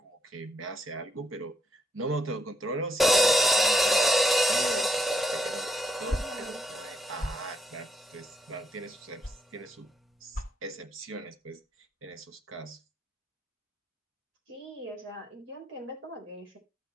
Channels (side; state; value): both; normal; correlation 0.78